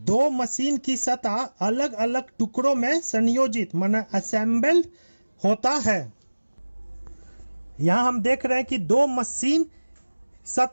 मशीन की सतह अलग अलग टुकड़ों में संयोजित माने असेंबल होता है। यहां हम देख रहे हैं कि दो मशीन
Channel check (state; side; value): inverted; both; correlation -1.00